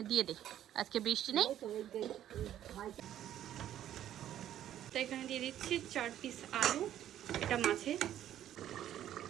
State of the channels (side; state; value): left; quieter; 11.5 dB